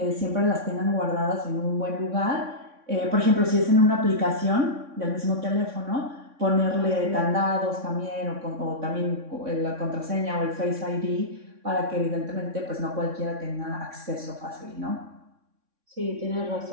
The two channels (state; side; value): late; left; 3.6 ms